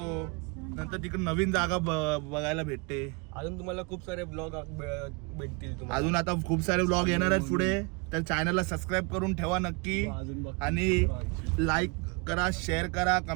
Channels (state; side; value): quieter; left; 30.7 dB